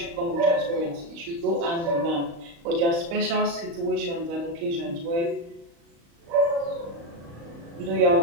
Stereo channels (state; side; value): late; left; 35 ms